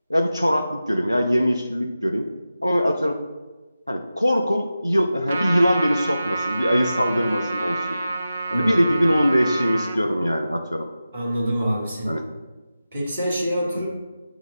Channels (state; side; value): inverted; both; correlation -0.93